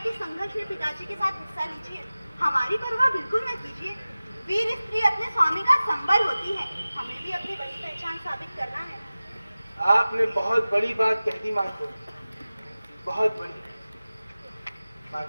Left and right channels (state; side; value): inverted; both; correlation -0.96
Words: संघर्ष में पिताजी के साथ हिस्सा लीजिए। हमारी परवाह बिल्कुल न कीजिए। वीर स्त्री अपने स्वामी का संबल होती है। हमें भी अपनी बड़ी पहचान साबित करना है। आपने बहुत बड़ी बात कह दी मार्को, बहुत बड़ी।